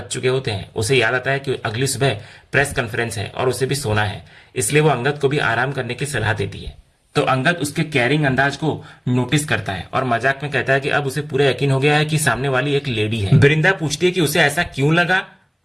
चुके होते हैं। उसे याद आता है कि अगली सुबह प्रेस कॉन्फ्रेंस है और उसे भी सोना है, इसलिए वो अंगद को भी आराम करने की सलाह देती है। तो अंगद उसके केयरिंग अंदाज को नोटिस करता है और मजाक में कहता है कि अब उसे पूरा यकीन हो गया है कि सामने वाली एक लेडी है। वृंदा पूछती है कि उसे ऐसा क्यों लगा।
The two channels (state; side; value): identical; both; correlation 1.00